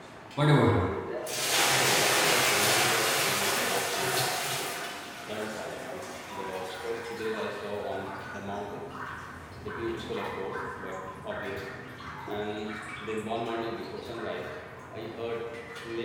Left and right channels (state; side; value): identical; both; correlation 1.00